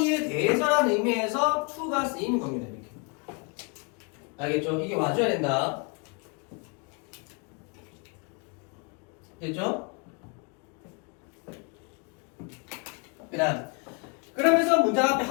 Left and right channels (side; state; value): right; quieter; 32.3 dB